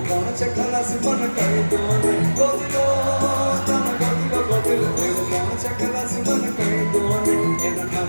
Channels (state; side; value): inverted; both; correlation -1.00